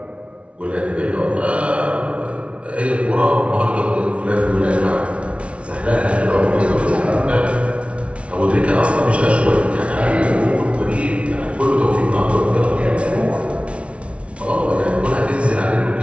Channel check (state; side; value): late; left; 0.061 ms